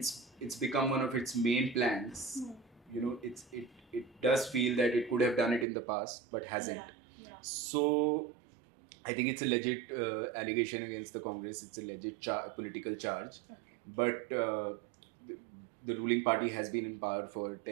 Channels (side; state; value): left; drops out; at 5.7 s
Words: become one of its main plans. It does feel that it could have done it in the past, but hasn't. Yeah. So I think it's a legit allegation against the Congress. It's a legit political charge. Okay. But the ruling party has been in power for